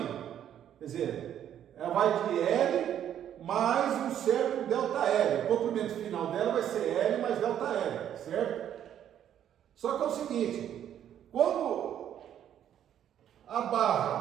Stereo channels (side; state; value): left; quieter; 10.2 dB